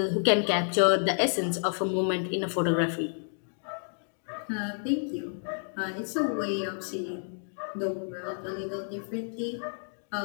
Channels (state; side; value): silent; right; digital silence